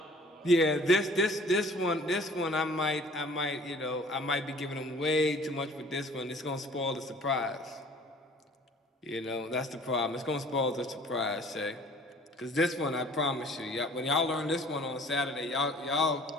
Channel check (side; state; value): both; normal; correlation 0.51